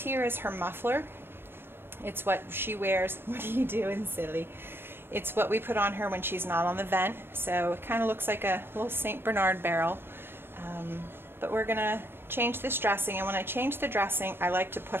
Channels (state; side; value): late; left; 0.11 ms